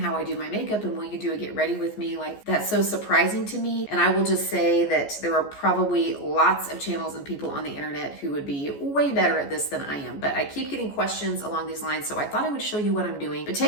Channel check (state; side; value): late; right; 14 ms